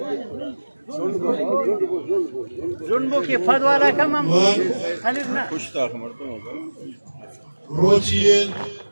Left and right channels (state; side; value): inverted; both; correlation -1.00